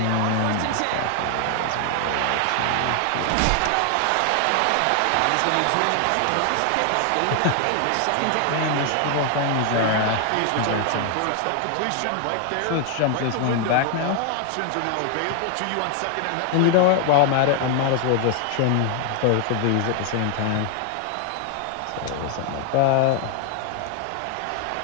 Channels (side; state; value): both; different; correlation 0.00